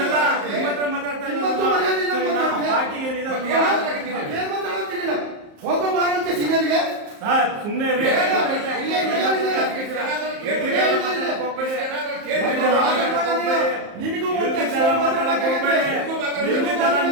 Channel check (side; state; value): left; late; 34 ms